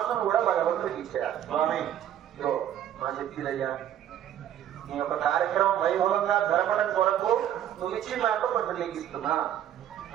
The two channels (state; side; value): quieter; left; 10.9 dB